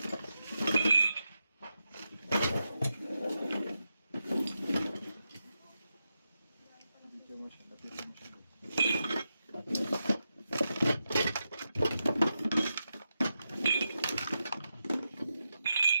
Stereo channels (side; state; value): both; inverted; correlation -0.88